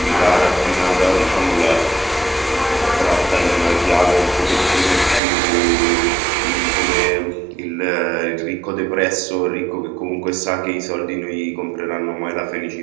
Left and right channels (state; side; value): drops out; left; at 5.2 s